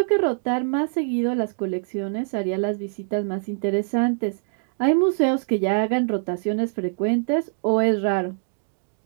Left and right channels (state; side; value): silent; left; digital silence